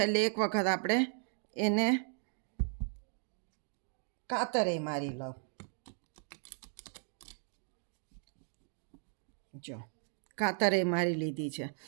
એટલે એક વખત આપણે એને કાતરે મારી લઉં. જો કાતરે મારી લીધી છે.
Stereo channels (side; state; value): left; silent; 54 dB below the other